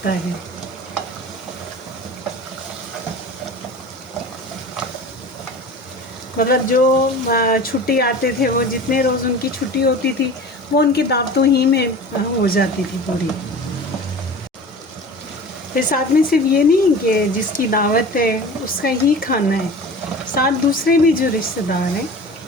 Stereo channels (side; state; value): both; normal; correlation 0.37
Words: है। मतलब जो छुट्टी आते थे, वो जितने रोज़ उनकी छुट्टी होती थी, वो उनकी दावतों ही में हो जाती थी पूरी। फिर साथ में सिर्फ ये नहीं कि जिसकी दावत है उसका ही खाना है, साथ दूसरे भी जो रिश्तेदार हैं